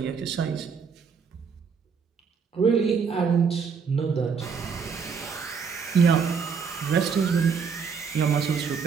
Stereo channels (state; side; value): quieter; left; 5.9 dB